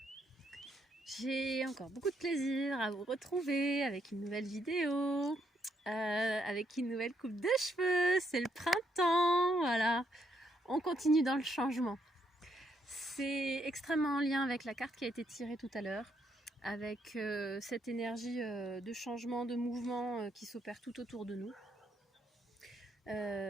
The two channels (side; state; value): both; normal; correlation 0.75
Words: J'ai encore beaucoup de plaisir à vous retrouver avec une nouvelle vidéo, avec une nouvelle coupe de cheveux. C'est le printemps, voilà. On continue dans le changement. C'est extrêmement en lien avec la carte qui a été tirée tout à l'heure, avec cette énergie de changement, de mouvement qui s'opère tout autour de nous.